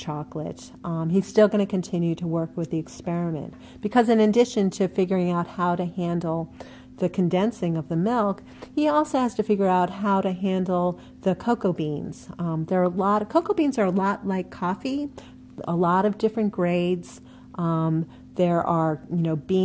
He's still going to continue to work with the experiment because in addition to figuring out how to handle the condensing of the milk, he also has to figure out how to handle the cocoa beans. Cocoa beans are a lot like coffee, a lot of different grades. There are,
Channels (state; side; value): identical; both; correlation 1.00